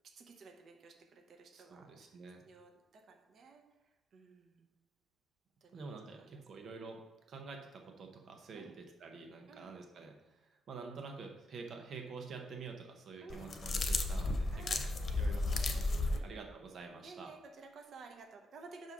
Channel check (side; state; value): both; normal; correlation 0.82